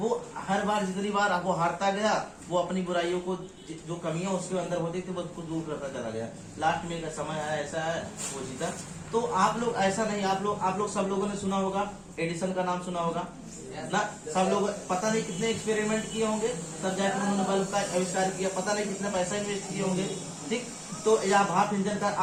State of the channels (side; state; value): both; identical; correlation 1.00